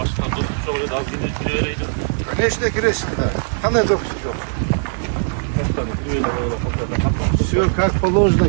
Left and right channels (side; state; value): left; silent; digital silence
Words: доступ жок эле аз кире берейди. Конечно, киресиң да. Кандай допуск жок? Все как положено